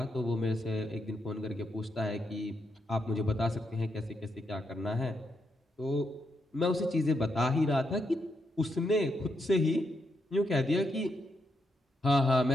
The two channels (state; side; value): normal; both; correlation 0.81